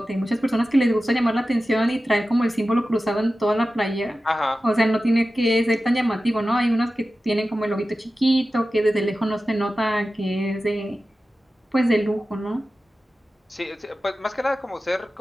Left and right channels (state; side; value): normal; both; correlation 0.94